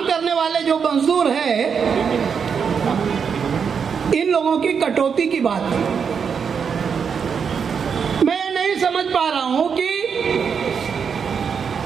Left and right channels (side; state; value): left; quieter; 6.5 dB